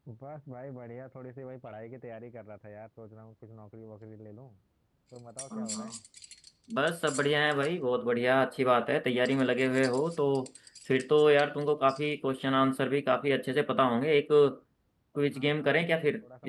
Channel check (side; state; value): both; identical; correlation 1.00